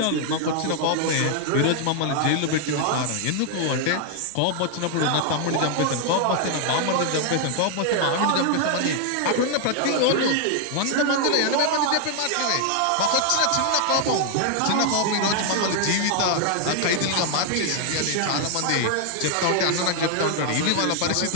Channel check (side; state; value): both; different; correlation 0.00